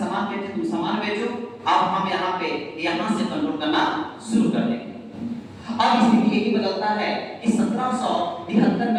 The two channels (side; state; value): both; identical; correlation 1.00